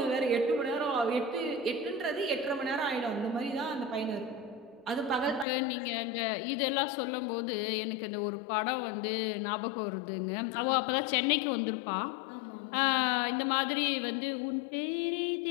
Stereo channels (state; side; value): drops out; right; at 5.5 s